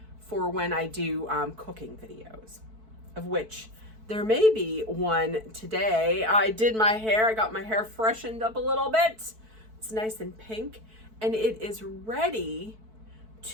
for when I do cooking videos, of which there may be one today. I did my hair. I got my hair freshened up a little bit. It's nice and pink, and it is ready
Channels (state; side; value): late; left; 4.6 ms